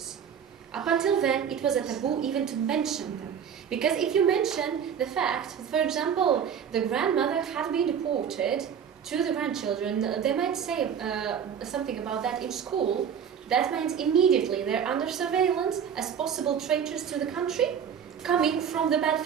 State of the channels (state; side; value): quieter; left; 7.9 dB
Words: Up until then, it was a taboo even to mention them. Because if you mention the fact, for example, the grandmother had been deported to the grandchildren, they might say something about that in school. That means immediately they're under surveillance as possible traitors to the country, coming from the bad